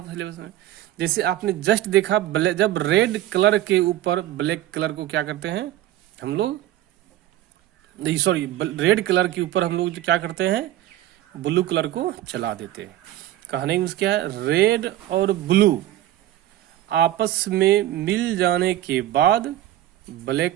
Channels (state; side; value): quieter; left; 13.9 dB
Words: सिलेबस में। जैसे आपने जस्ट देखा, जब रेड कलर के ऊपर ब्लैक कलर को क्या करते हैं हम लोग, नहीं सॉरी, रेड कलर के ऊपर हम लोग क्या करते हैं, ब्लू कलर को चला देते हैं। कहने में क्या है, रेड और ब्लू आपस में मिल जाने के बाद